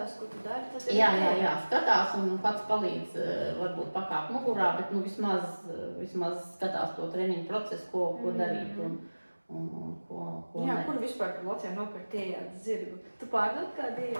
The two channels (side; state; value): both; inverted; correlation -1.00